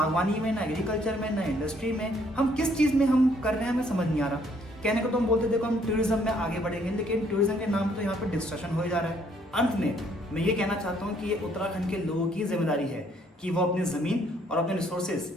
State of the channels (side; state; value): both; normal; correlation 0.66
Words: में, ना एग्रीकल्चर में, ना इंडस्ट्री में, हम किस चीज़ में हम कर रहे हैं हमें समझ नहीं आ रहा। कहने को तो हम बोलते देखो हम टूरिज्म में आगे बढ़ेंगे, लेकिन टूरिज्म के नाम तो यहाँ पर डिस्ट्रक्शन हो जा रहा है। अंत में मैं ये कहना चाहता हूँ कि ये उत्तराखंड के लोगों की जिम्मेदारी है कि वो अपनी ज़मीन और अपने रिसोर्सेज